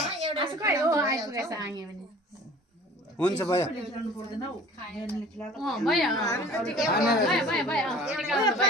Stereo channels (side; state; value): both; normal; correlation 0.46